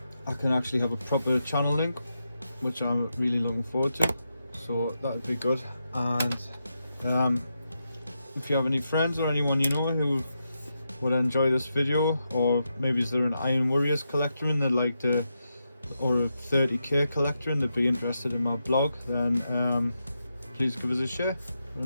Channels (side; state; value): both; inverted; correlation -0.86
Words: I can actually have a proper channel link, which I'm really looking forward to. So that would be good. And if you have any friends or anyone you know who would enjoy this video, or maybe is there an Iron Warriors collector and they'd like to, or a 30k collector and they'd be interested in my blog, then please give us a share,